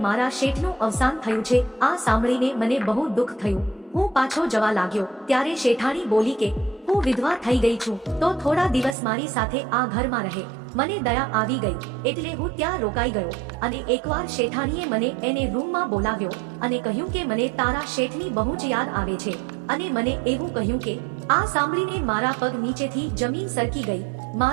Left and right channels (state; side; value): drops out; left; at 9.0 s